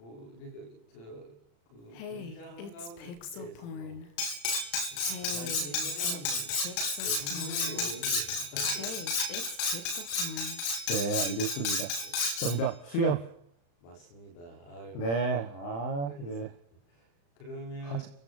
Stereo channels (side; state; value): right; late; 35 ms